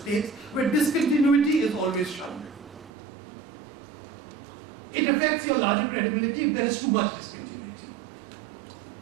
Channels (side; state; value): left; drops out; at 2.9 s